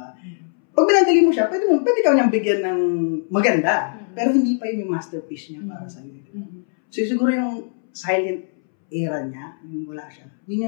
Pag binadali mo siya, pwede ka niyang bigyan ng maganda. Pero hindi pa yun yung masterpiece niya para sa'yo. Diba? So siguro yung silent era niya, yung wala siya,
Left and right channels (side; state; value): right; silent; 65 dB below the other